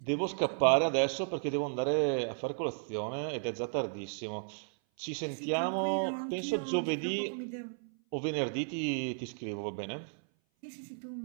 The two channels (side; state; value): left; silent; 55 dB below the other